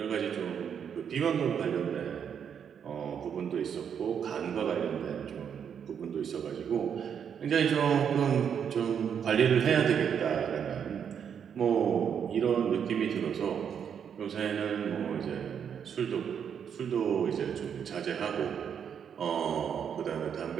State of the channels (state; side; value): quieter; left; 7.8 dB